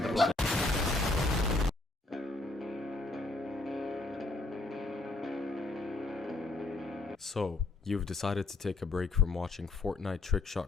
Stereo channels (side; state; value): right; quieter; 3.2 dB